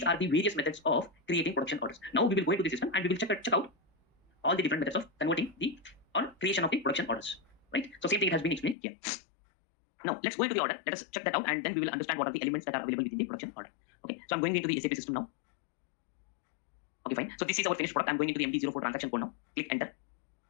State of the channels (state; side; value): drops out; right; at 8.8 s